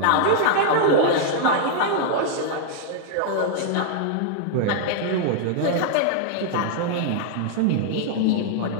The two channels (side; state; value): both; different; correlation -0.01